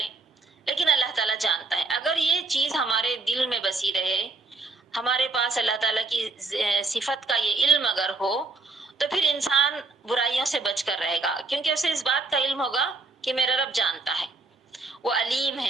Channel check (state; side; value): quieter; left; 3.5 dB